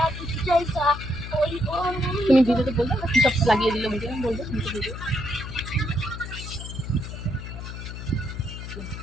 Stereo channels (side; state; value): left; noise; hum, 9 dB below the sound